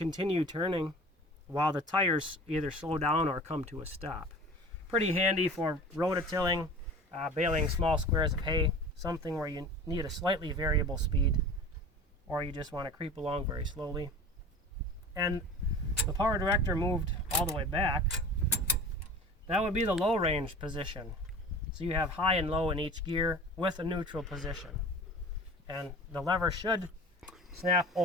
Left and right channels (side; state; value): both; normal; correlation 0.39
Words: turning while the tires either slow down or come to a stop. Pretty handy for rototilling, baling small squares of hay, something where you need a slightly variable speed or you just want to creep along very slowly. And the power director moved all the way back. That would be the low range position. So you have high and low in each gear with a neutral position. And the lever should snap